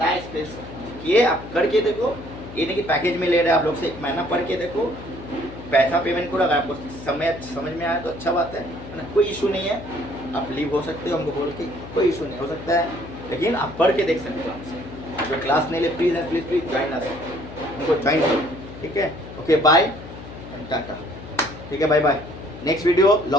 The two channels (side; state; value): left; noise; hum, 14 dB below the sound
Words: स्पेस किए आप करके देखो। ये नहीं कि पैकेज में ले रहे हैं आप लोग से, 1 महीना पढ़ के देखो, पैसा पेमेंट करो। अगर आपको समझ में आया तो अच्छा बात है ना, कोई इशू नहीं है। आप लीव हो सकते हो हमको बोल के, कोई इशू नहीं हो सकता है, लेकिन आप पढ़ के देख सकते हो आपसे। जो क्लास नहीं ले please please please join us, उनको ज्वाइन करो, ठीक है? Okay bye, tata. ठीक है, bye bye. Next video